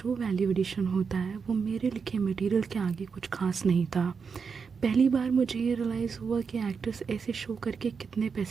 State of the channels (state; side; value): quieter; left; 5.7 dB